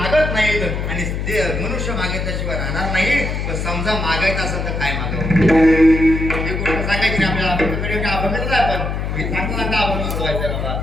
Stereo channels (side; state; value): left; noise; hum, 3 dB below the sound